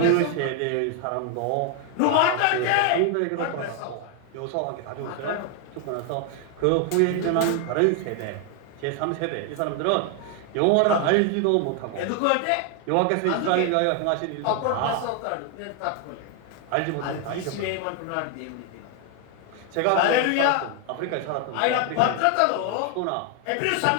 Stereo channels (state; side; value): different; both; correlation 0.00